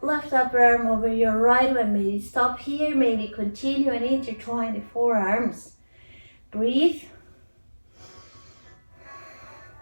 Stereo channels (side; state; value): both; inverted; correlation -1.00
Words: left upper arm over your right one. Maybe stop here, maybe continue and intertwine the forearms. Breathe.